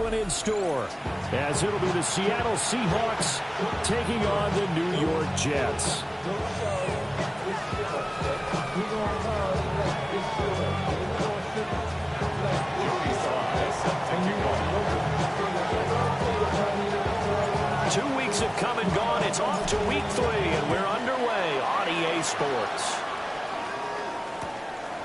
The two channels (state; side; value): identical; both; correlation 1.00